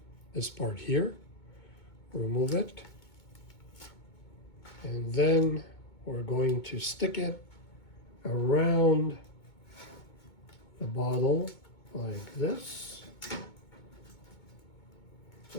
this part here, remove it, and then we're going to stick it around the bottle like this,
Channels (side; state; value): right; late; 2.2 ms